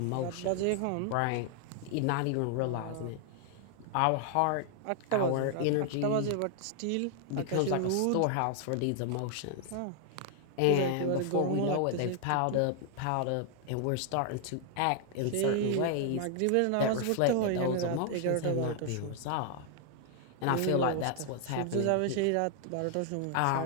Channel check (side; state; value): both; different; correlation 0.00